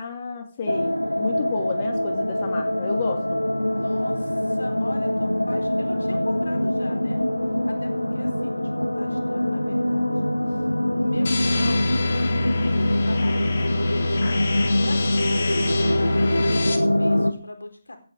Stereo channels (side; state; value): both; inverted; correlation -0.97